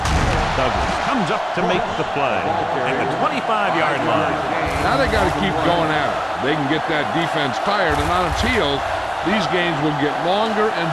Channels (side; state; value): both; identical; correlation 1.00